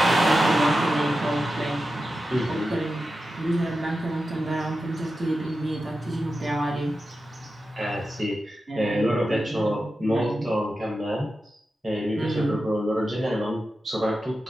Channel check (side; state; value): both; normal; correlation 0.91